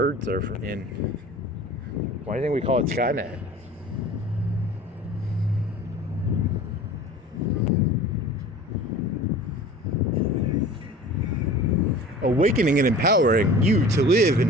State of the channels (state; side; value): normal; both; correlation 0.41